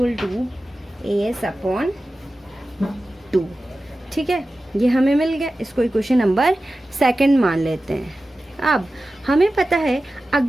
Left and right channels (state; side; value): normal; both; correlation 0.94